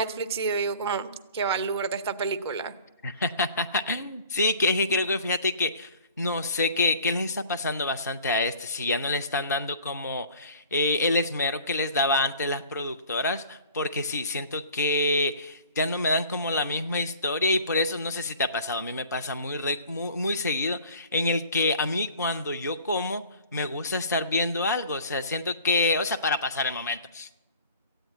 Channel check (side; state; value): both; inverted; correlation -0.47